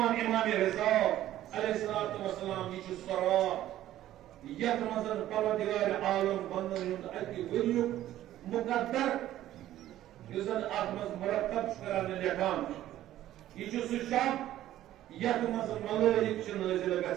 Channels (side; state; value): left; quieter; 13.4 dB